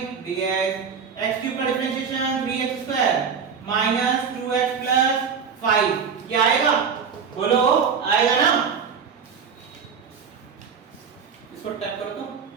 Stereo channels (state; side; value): quieter; left; 6.3 dB